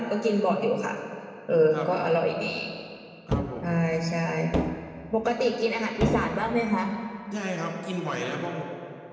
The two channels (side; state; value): both; identical; correlation 1.00